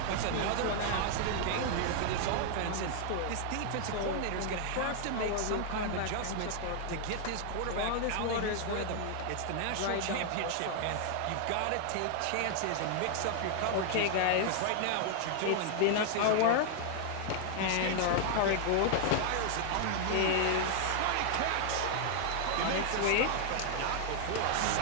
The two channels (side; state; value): both; different; correlation 0.00